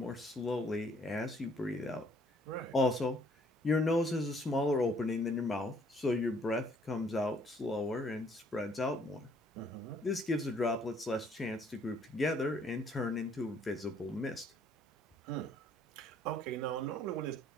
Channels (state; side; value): normal; both; correlation 0.63